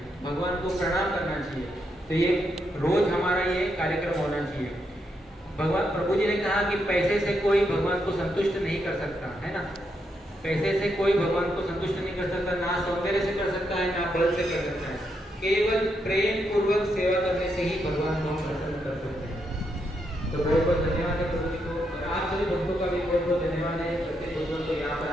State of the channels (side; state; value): both; normal; correlation 0.80